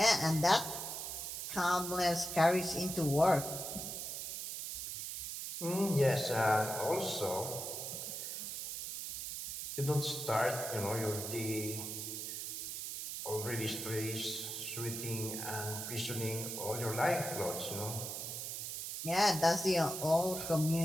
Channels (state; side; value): noise; right; hiss, 5 dB below the sound